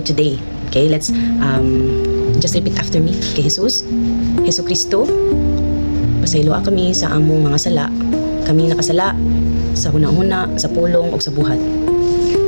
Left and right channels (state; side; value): inverted; both; correlation -1.00